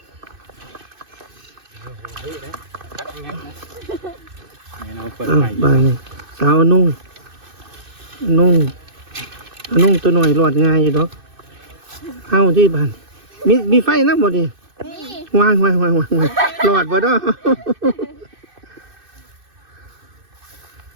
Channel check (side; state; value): left; late; 2.6 ms